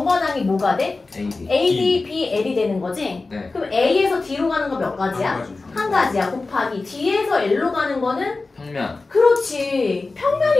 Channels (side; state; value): right; quieter; 3.6 dB